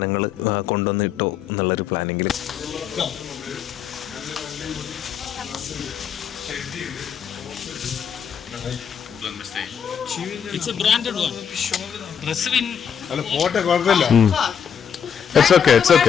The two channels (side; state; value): right; quieter; 7.8 dB